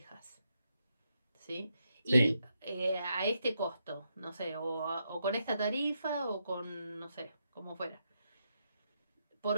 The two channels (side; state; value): both; inverted; correlation -0.81